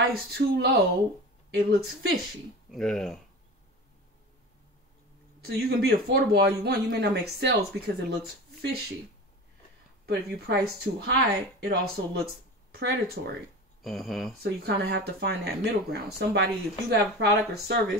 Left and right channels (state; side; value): normal; both; correlation 0.32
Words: too low, it looks fishy. Yeah. So you can be affordable all you want. You may not make sales because it looks fishy. But if you price too high, it also looks predatory. So you kind of have to find that middle ground. If you have a product or